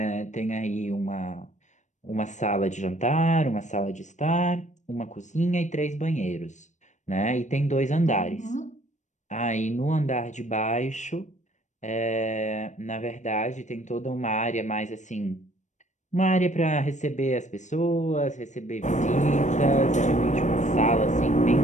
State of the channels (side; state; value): right; late; 0.35 ms